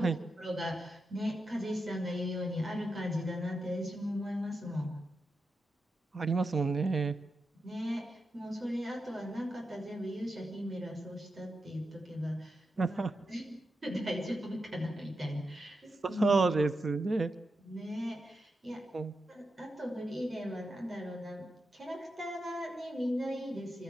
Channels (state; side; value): normal; both; correlation 0.87